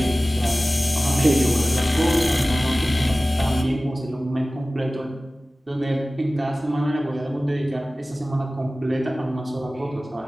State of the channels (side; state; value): both; normal; correlation 0.97